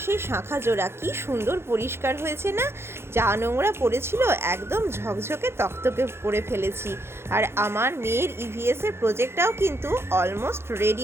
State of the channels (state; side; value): late; left; 0.12 ms